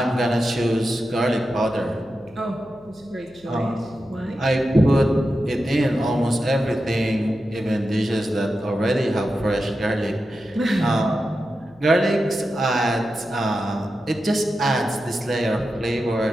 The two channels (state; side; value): noise; left; hum, 28 dB below the sound